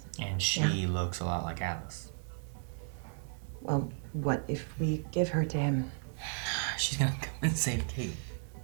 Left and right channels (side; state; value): left; silent; 55 dB below the other